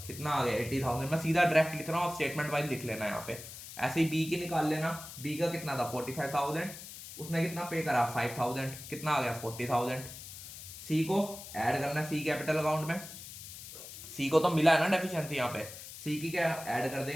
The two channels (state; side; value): noise; left; hiss, 13 dB below the sound